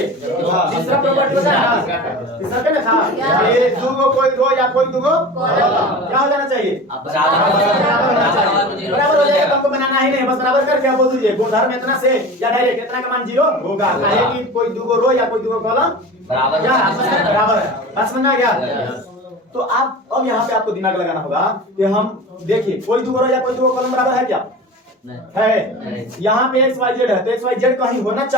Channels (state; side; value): normal; both; correlation 0.34